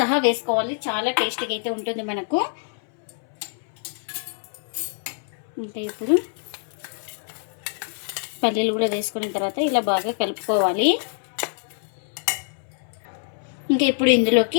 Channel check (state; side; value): silent; right; 62 dB below the other